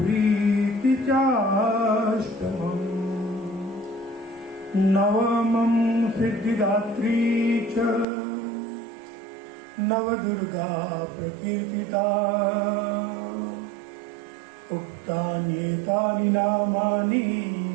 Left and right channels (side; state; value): left; drops out; at 8.1 s